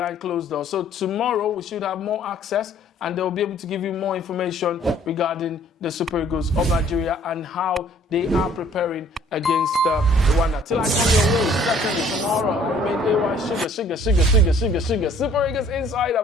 closed doors. So tomorrow we should have more access, and they'll be able to give you more information regarding the Super Eagles of Nigeria and how they are preparing against Rwanda. Till I come your way, certainly tomorrow, I remain AY Sugar, Super Eagles Insider,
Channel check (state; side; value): normal; both; correlation 0.57